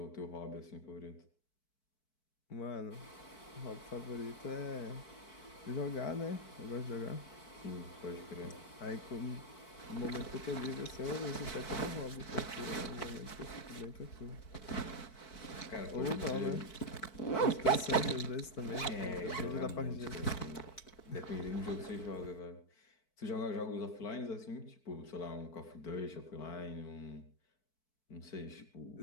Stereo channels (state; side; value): late; right; 4.6 ms